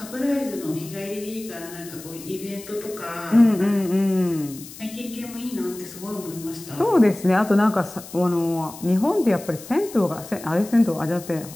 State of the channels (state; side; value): noise; left; hiss, 16 dB below the sound